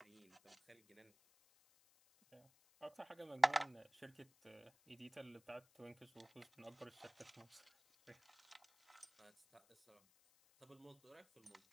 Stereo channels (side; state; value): left; noise; hiss, 29 dB below the sound